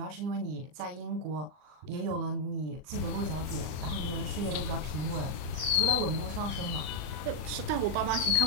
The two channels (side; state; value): left; late; 39 ms